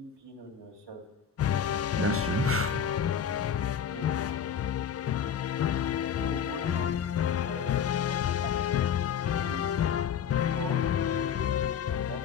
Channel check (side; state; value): right; quieter; 7.8 dB